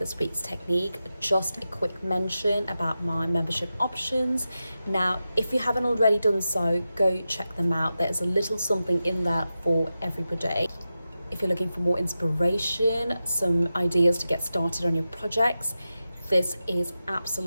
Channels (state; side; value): inverted; both; correlation -0.92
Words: week's technique, just a quick mention about my membership options. Now, if you haven't already done so, go check them out. There's a little something in there for everybody. If you're looking for more inspiration, some ideas to get started on your projects, this is